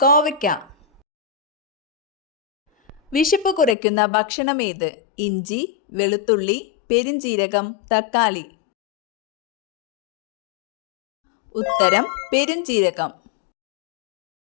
കോവയ്ക്ക. വിശപ്പ് കുറയ്ക്കുന്ന ഭക്ഷണം ഏത്? ഇഞ്ചി, വെളുത്തുള്ളി, പെരുംജീരകം, തക്കാളി. ഉത്തരം പെരുംജീരകം.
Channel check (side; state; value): right; drops out; at 3.8 s